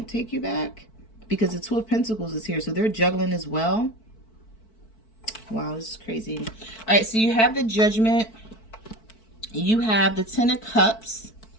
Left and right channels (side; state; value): right; late; 4.5 ms